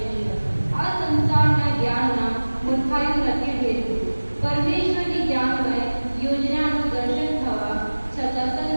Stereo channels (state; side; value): inverted; both; correlation -1.00